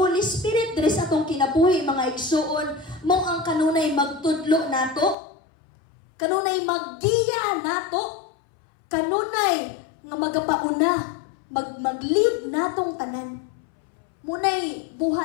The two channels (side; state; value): right; drops out; at 5.2 s